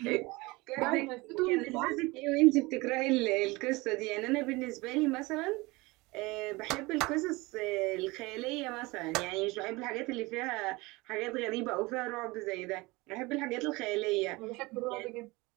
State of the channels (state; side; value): quieter; left; 23.1 dB